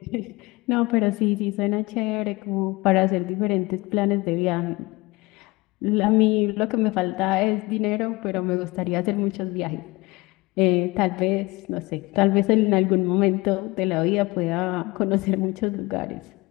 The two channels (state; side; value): quieter; right; 22.6 dB